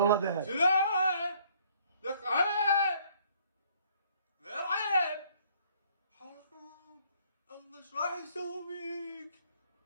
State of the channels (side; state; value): both; inverted; correlation -0.62